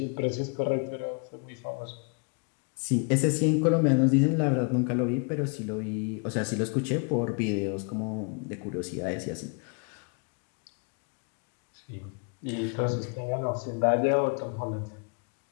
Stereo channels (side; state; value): right; quieter; 37.8 dB